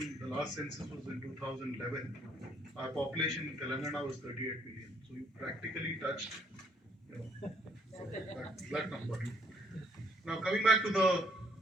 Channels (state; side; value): normal; both; correlation 0.67